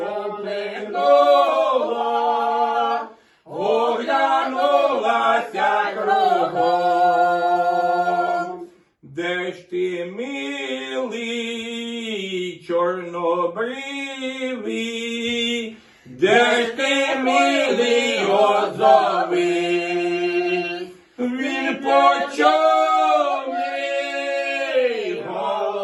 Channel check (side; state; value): both; identical; correlation 1.00